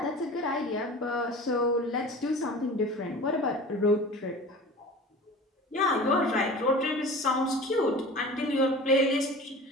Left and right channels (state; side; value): normal; both; correlation 0.38